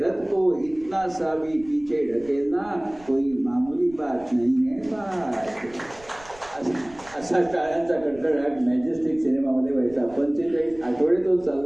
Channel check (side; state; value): right; noise; rumble, 23 dB below the sound